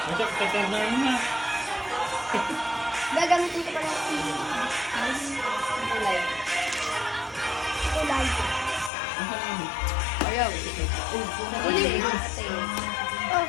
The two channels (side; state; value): right; drops out; at 8.9 s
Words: Masyak, tatarnar mo na. Gagamitin ko pa lang. Kulay. Kulay. Ayaw. Kulay. Ate. Oh,